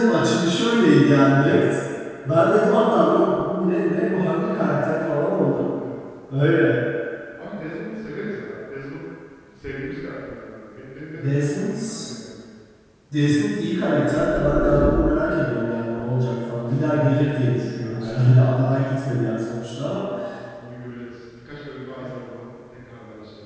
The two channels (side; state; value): both; identical; correlation 1.00